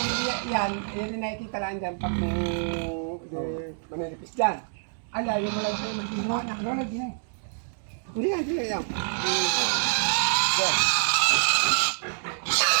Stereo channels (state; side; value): silent; left; digital silence